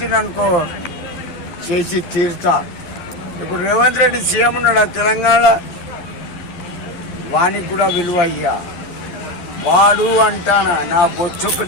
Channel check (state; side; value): late; right; 11 ms